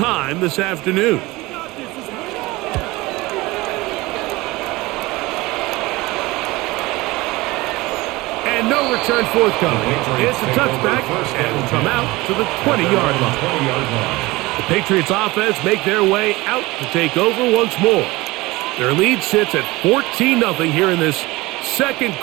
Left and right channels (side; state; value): left; quieter; 21.0 dB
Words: this afternoon. And no return forthcoming. It's a touchback and will come out to the 20-yard line. The Patriots offense make their way out to take over once more. Their lead sits at 14-0 here in this 2nd